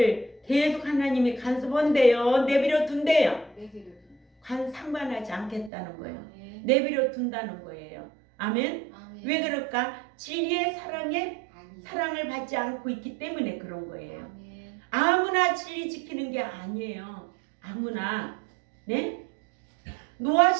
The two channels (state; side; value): drops out; left; at 5.7 s